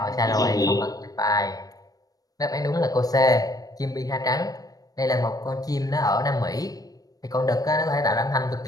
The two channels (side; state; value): right; late; 0.18 ms